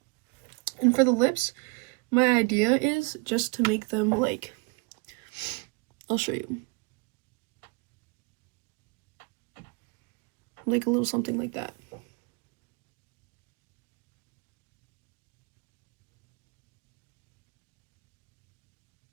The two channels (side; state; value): left; quieter; 31.6 dB